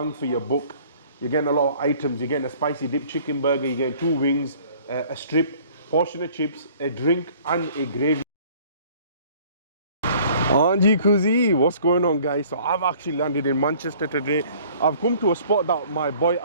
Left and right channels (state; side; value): inverted; both; correlation -0.54